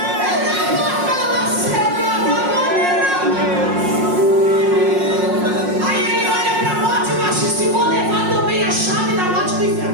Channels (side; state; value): left; late; 5.5 ms